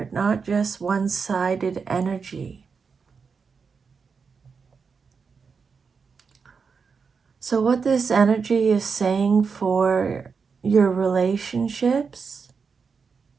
not just one-sided energy. So what this energy is saying for your relationships,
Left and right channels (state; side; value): quieter; left; 5.5 dB